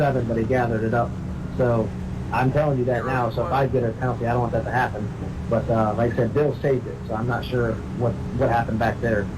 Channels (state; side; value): identical; both; correlation 1.00